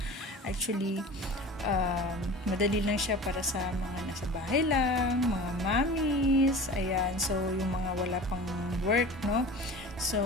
actually, madali lang siya para sa mga nasa bahay lang, mga mommies, ayan, so yung mga wala pang work, no? So,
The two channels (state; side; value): normal; both; correlation 0.37